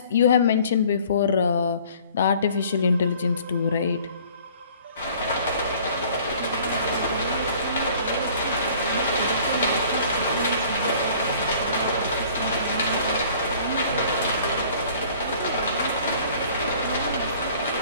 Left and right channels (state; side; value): inverted; both; correlation -0.52